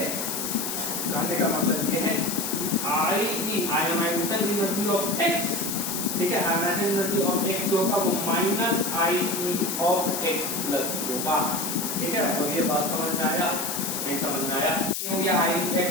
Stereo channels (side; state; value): left; noise; hiss, 3 dB below the sound